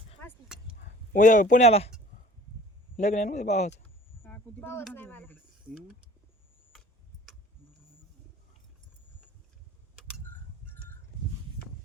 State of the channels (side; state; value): both; normal; correlation 0.48